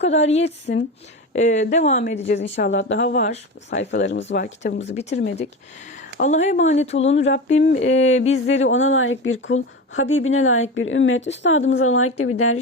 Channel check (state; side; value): normal; both; correlation 0.24